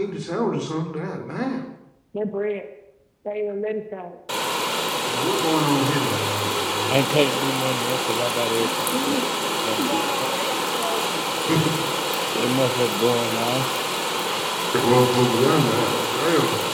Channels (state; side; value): identical; both; correlation 1.00